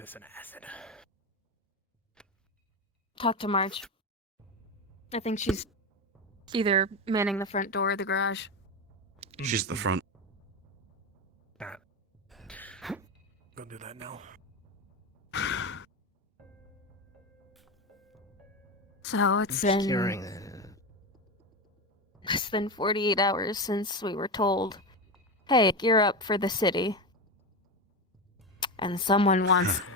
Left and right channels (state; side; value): normal; both; correlation 0.17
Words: in acid. Talk to Marge. I think she's either manning the front door or the garage. She's at the front. Go do that now. So it's been less than 48 hours since we were told, hey, gear up for the city. And someone wants